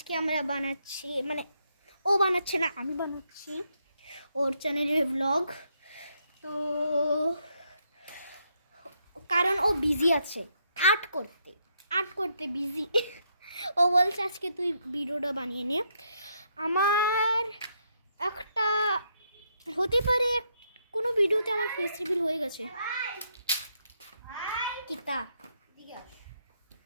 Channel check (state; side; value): inverted; both; correlation -0.77